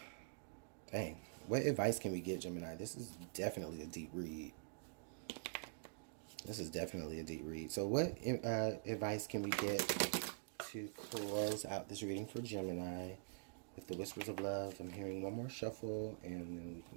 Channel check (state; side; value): silent; left; digital silence